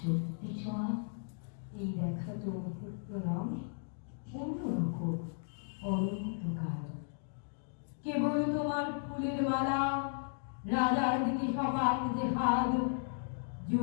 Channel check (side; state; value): right; silent; digital silence